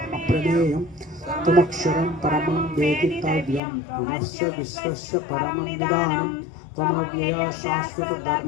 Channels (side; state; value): right; drops out; at 3.6 s